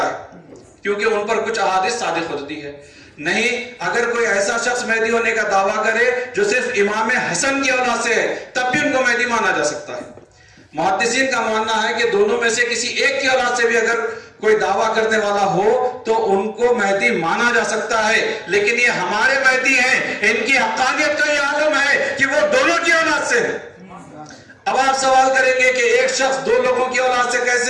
ہے کیونکہ ان پر کچھ احادیث صادق ہوتی ہے. نہیں، اگر کوئی ایسا شخص مہدی ہونے کا دعویٰ کرے جو صرف امام حسن کی اولاد سے ہے تب بھی ان کو مہدی مانا جا سکتا ہے. محدثین کا ماننا ہے کہ دونوں میں سے کسی ایک کی اولاد سے بھی اگر کوئی دعویٰ کرنے والا ہو تو ان کو مہدی مانا جا سکتا ہے، لیکن یہ ہمارے مہدی ہیں، ان کی حقانیت کا یہ عالم ہے کہ وہ دونوں کی اولاد سے ہے. اب آپ سوال کریں گے کہ ایک شخص دو لوگوں کی اولاد سے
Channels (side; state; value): both; identical; correlation 1.00